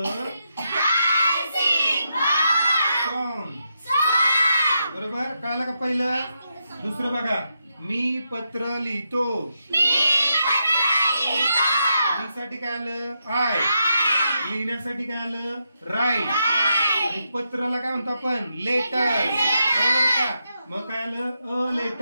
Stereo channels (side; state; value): both; inverted; correlation -0.83